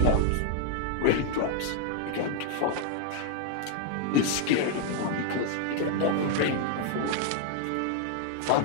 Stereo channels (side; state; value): both; different; correlation 0.00